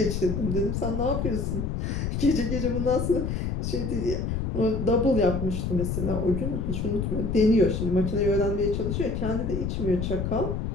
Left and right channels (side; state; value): left; noise; rumble, 1 dB below the sound